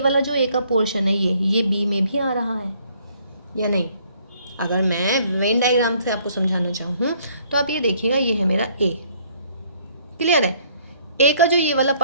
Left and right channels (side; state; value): both; inverted; correlation -0.63